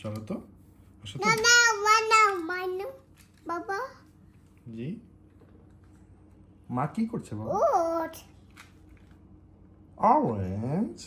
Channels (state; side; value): identical; both; correlation 1.00